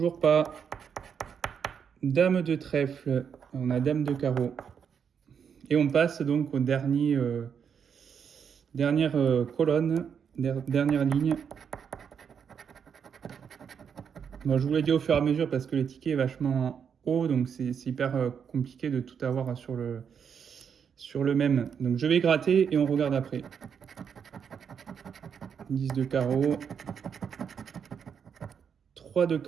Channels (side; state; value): left; quieter; 7.2 dB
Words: pas. Dame de trèfle, on a dame de carreau. Et on passe donc au dernière colonne, dernière ligne. Bon, je vous l'ai dit au fur et à mesure parce que le ticket est vachement haut, donc c'est hyper compliqué de tout avoir sur le même. Donc je vais gratter et on regarde après. 10 de carreau, 3 de